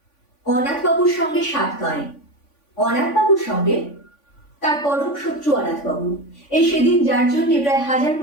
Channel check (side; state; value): right; late; 3.5 ms